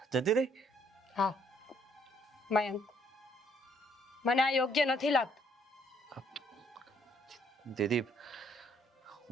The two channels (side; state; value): both; normal; correlation 0.66